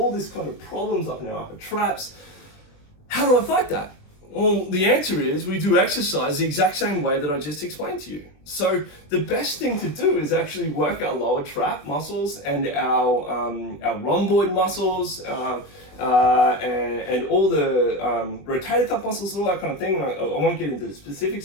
this kind of problems up in our upper traps. How do I fight that? Well, the answer is we do exercise the exact same way that I just explained to you. So the best thing to do is actually work our lower trap muscles and our rhomboid muscles and all the rotator cuff muscles and all that kind of thing. I won't get into the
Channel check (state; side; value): late; right; 21 ms